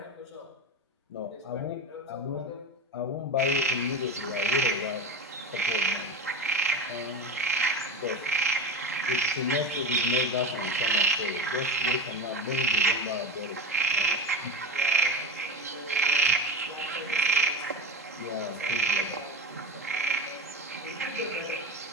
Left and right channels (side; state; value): both; normal; correlation 0.22